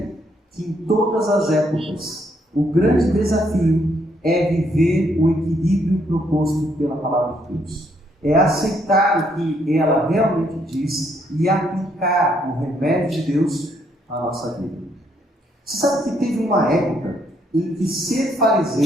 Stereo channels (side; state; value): both; normal; correlation 0.71